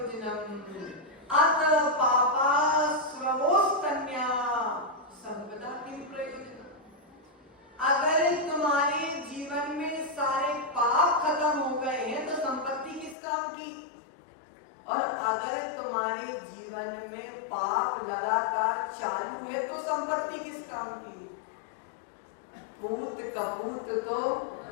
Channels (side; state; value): right; drops out; at 13.2 s